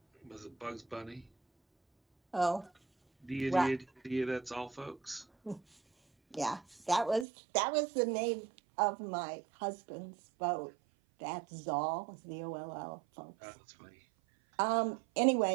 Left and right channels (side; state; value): left; drops out; at 7.2 s